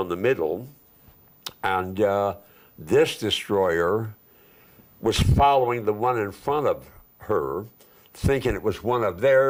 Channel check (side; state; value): both; identical; correlation 1.00